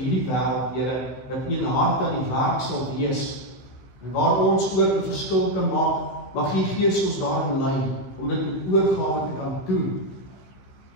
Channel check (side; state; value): right; late; 15 ms